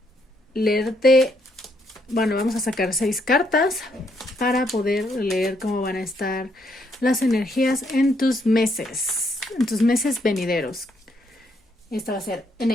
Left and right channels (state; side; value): normal; both; correlation 0.73